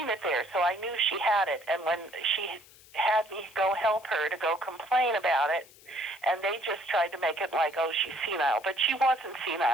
it there, so I knew she had it. And when she had me go help her to go complain about it, and they just tried to make it like, oh, she's senile. But she wasn't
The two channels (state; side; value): noise; left; hiss, 24 dB below the sound